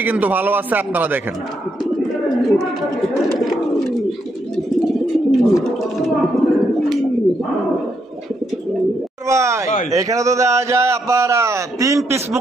কিন্তু ভালো আছে, আপনারা দেখেন। ভাই ভাই। এখানে তো দেখা যায় আপনার 3 পিস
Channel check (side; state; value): both; normal; correlation 0.77